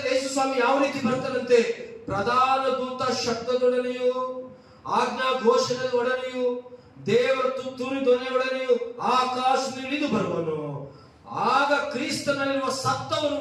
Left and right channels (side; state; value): both; identical; correlation 1.00